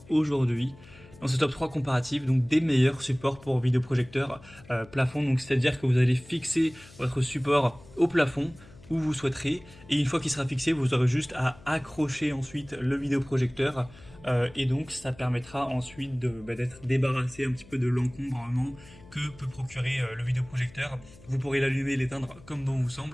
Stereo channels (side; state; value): left; noise; hum, 22 dB below the sound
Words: aujourd'hui dans ce top 3 comparatif, donc des meilleurs supports pour vidéoprojecteur plafond. Donc c'est-à-dire que vous allez fixer votre support au plafond où vous souhaiterez, et une fois qu'il sera fixé, vous aurez juste à accrocher ensuite le vidéoprojecteur, et donc ça permettra ensuite d'être débarrassé un petit peu de l'encombrement que peut procurer le vidéoprojecteur. Vous pourrez l'allumer et l'éteindre comme bon vous